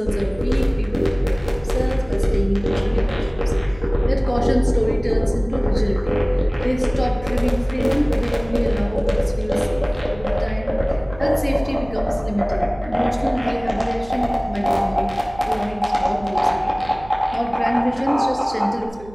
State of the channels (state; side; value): noise; right; hum, 20 dB below the sound